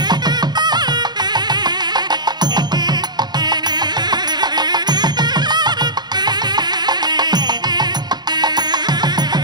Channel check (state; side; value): late; left; 0.21 ms